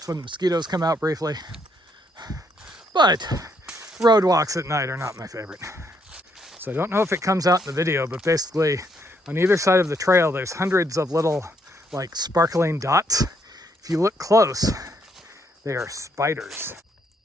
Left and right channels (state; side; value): normal; both; correlation 0.72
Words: when the mosquitoes come out briefly. But road walks at night are not my favorite. So I don't know if it comes out in the video, but basically on either side of the trail, there's hundreds of little like sparkling dots. If you look close, they are spiders.